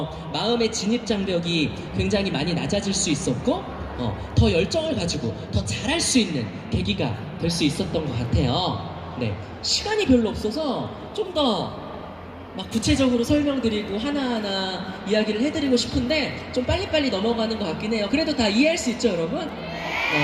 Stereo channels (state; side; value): identical; both; correlation 1.00